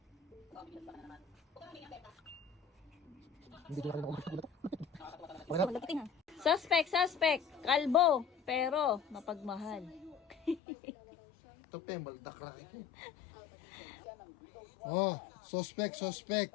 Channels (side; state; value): right; drops out; at 10.6 s